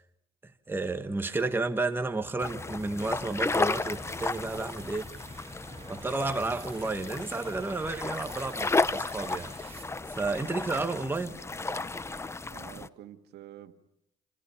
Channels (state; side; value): normal; both; correlation 0.68